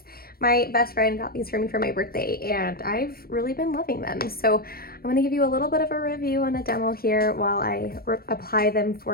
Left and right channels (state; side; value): late; right; 0.44 ms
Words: My best friend got these for me for my birthday and I've really been loving them. So I'm going to give you a little bit of a review and a demo here while I apply them